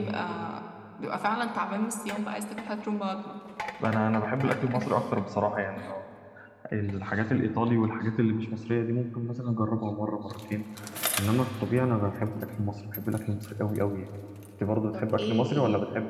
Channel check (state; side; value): identical; both; correlation 1.00